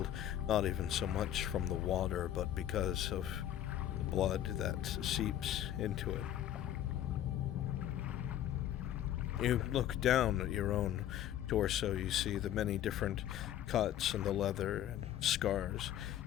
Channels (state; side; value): quieter; right; 11.7 dB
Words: not even so much from the water, but because of the blood that seeps into it. You look down at your own torso, you see the many different cuts in the leather and scars